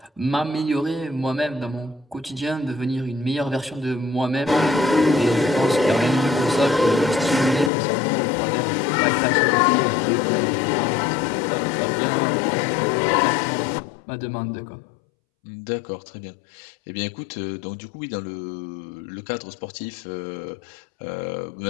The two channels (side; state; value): right; drops out; at 7.7 s